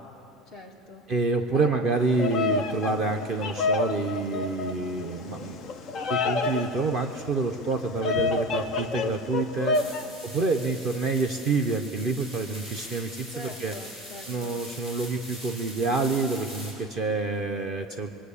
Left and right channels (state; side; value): normal; both; correlation 0.31